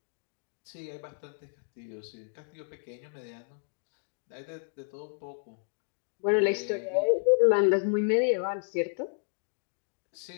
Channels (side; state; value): right; silent; digital silence